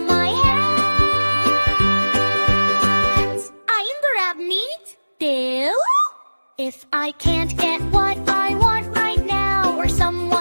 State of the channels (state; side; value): inverted; both; correlation -1.00